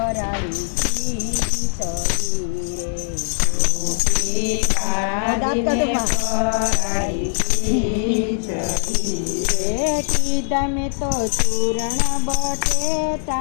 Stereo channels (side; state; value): right; silent; 65 dB below the other